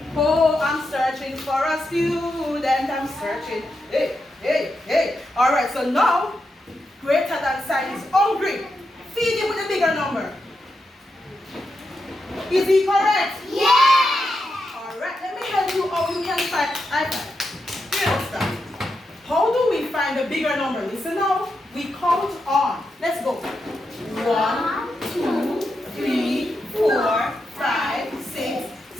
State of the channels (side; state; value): both; normal; correlation 0.86